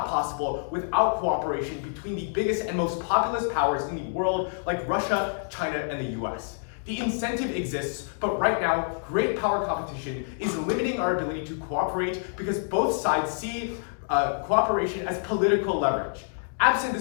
possible without cooperation between the biggest and most populous powers in the world, like Russia, China, and the US. The incentive exists, but right now, great power competition is limiting our ability to cooperate because both sides see cooperation as political leverage. Absent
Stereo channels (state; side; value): silent; right; digital silence